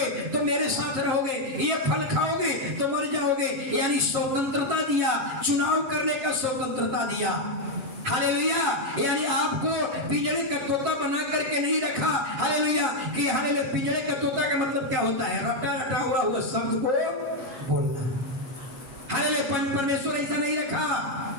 तो मेरे साथ रहोगे, ये फल खाओगे तो मर जाओगे, यानी स्वतंत्रता दिया, चुनाव करने का स्वतंत्रता दिया। हालेलुया। यानी आपको पिंजरे का तोता बना करके नहीं रखा। हालेलुया। कि हालेलुया, पिंजरे का तोता का मतलब क्या होता है? रटा रटा हुआ शब्द को बोलना। हालेलुया। परमेश्वर ऐसा नहीं रखा।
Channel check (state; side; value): late; left; 7.3 ms